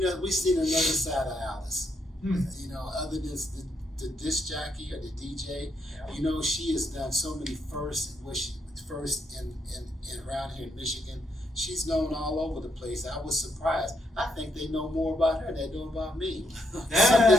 another side of Alice. Hmm. You know, other than the disc jockey or the DJ, you know, she has done so many firsts in around here in Michigan. She's known all over the place. I was surprised. I think they know more about her than they know about me.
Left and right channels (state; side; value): normal; both; correlation 0.76